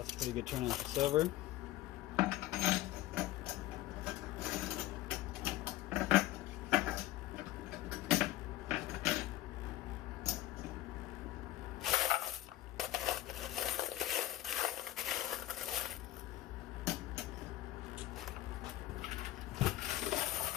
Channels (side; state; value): right; quieter; 15.4 dB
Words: a pretty good turnout for silver.